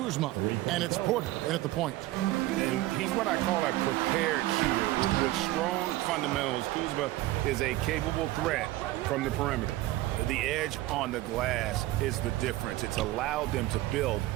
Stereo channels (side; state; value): left; quieter; 16.9 dB